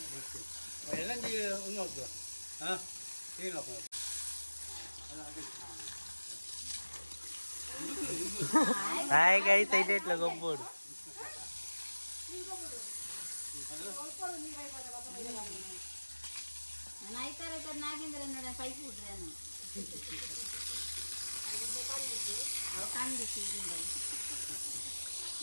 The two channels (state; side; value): inverted; both; correlation -1.00